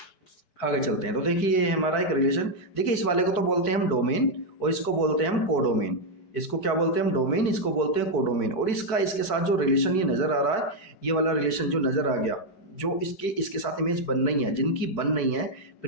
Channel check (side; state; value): right; late; 4.6 ms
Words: आगे चलते हैं। तो देखिए ये हमारा एक रिलेशन, देखिए इस वाले को तो बोलते हैं हम डोमेन, और इसको बोलते हैं हम कोडोमेन। इसको क्या बोलते हैं हम, डोमेन, इसको बोलते हैं कोडोमेन। और इसका इसके साथ जो रिलेशन ये नज़र आ रहा है, ये वाला रिलेशन जो नज़र आ गया, जो इसके साथ इमेज बन नहीं है, जिनकी बन नहीं है